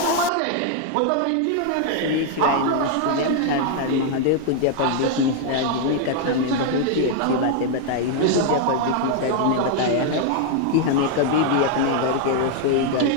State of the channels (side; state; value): both; different; correlation 0.00